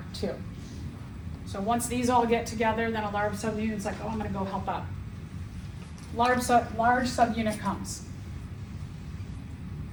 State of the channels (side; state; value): both; identical; correlation 1.00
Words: too. So once these all get together, then a large subunit's like, oh, I'm gonna go help out. Large subunit comes.